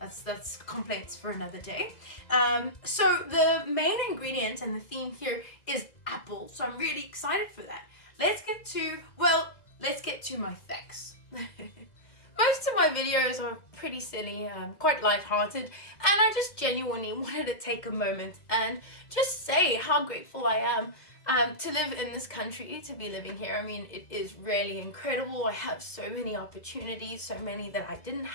complaints for another day. So the main ingredient and the theme here is apple. So I'm really excited for that. Let's get to my facts. Most of my videos are pretty silly, quite lighthearted, and I just genuinely wanted to take a moment and just say how grateful I am to live in this country, to be living here. I mean, it is really incredible. I have so many opportunities, so many that I didn't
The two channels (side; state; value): right; late; 2.1 ms